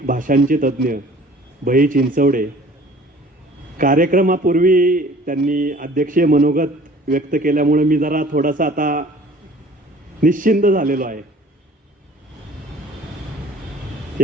भाषांचे तज्ज्ञ बही चिंचवडे. कार्यक्रमापूर्वी त्यांनी अध्यक्षीय मनोगत व्यक्त केल्यामुळे मी जरा थोडासा आता निश्चिंत झालेलो आहे.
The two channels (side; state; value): both; normal; correlation 0.50